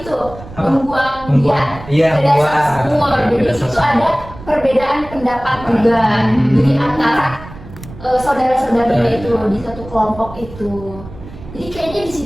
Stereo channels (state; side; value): noise; right; rumble, 16 dB below the sound